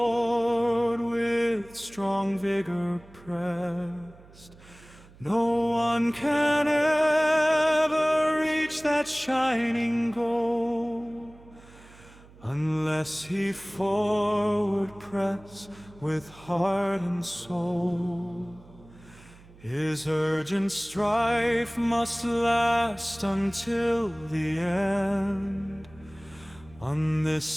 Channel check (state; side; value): noise; right; hum, 23 dB below the sound